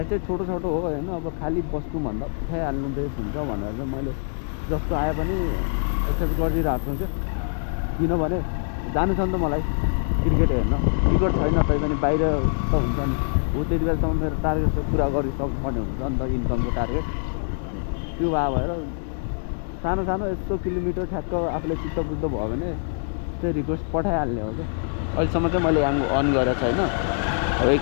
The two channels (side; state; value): right; silent; 62 dB below the other